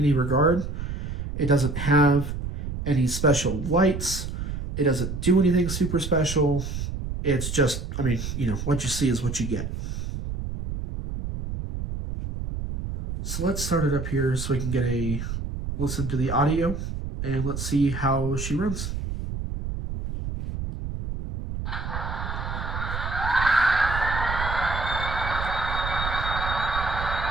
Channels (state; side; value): noise; right; rumble, 5 dB below the sound